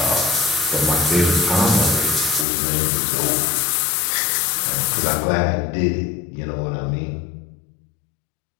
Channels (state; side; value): drops out; right; at 2.5 s